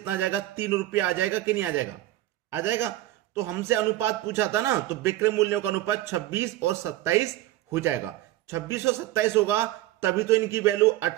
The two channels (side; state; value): left; quieter; 15.4 dB